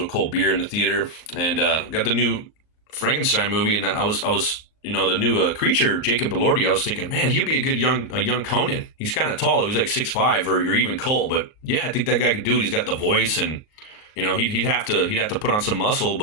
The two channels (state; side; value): late; right; 38 ms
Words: cold beer in the theater, and got the new Frankenstein movie, and I was the new creature, Jacob Elordi. I was thinking, man, he'd be a good young Conan. He's kind of tall, though. He's like 6'5", or even Cole, but yeah, I think that guy could do it. He's got the voice, and he'd have to put on some muscle,